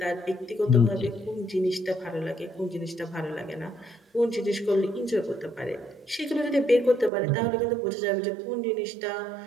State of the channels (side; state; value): left; drops out; at 7.1 s